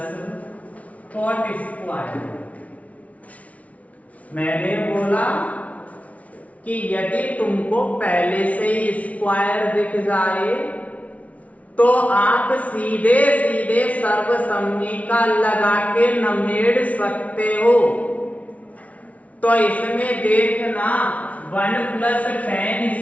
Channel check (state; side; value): late; right; 0.067 ms